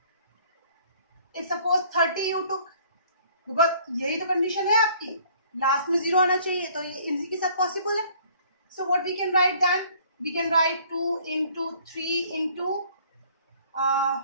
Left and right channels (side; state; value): both; inverted; correlation -0.57